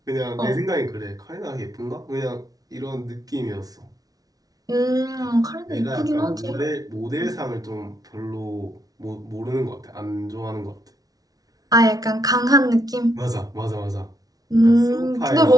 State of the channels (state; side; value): late; left; 0.18 ms